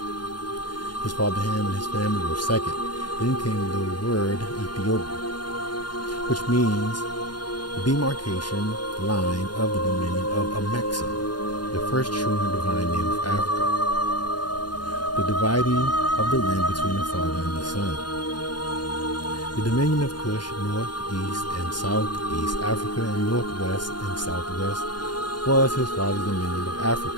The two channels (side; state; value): right; late; 0.71 ms